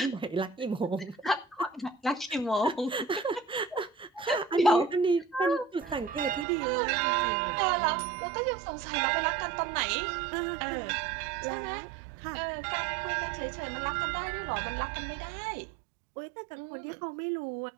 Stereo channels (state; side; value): drops out; left; at 6.5 s